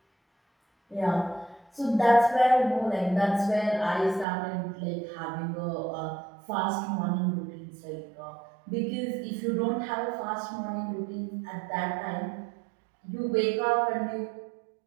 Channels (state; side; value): drops out; left; at 4.2 s